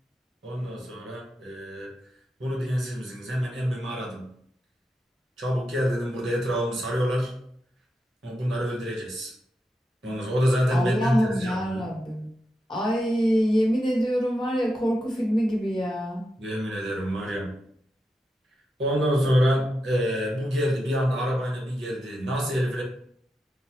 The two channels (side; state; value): both; normal; correlation 0.87